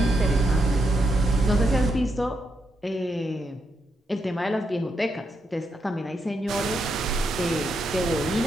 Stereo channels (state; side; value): normal; both; correlation 0.81